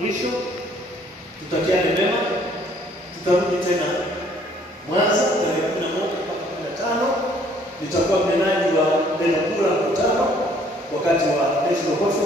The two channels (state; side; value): normal; both; correlation 0.61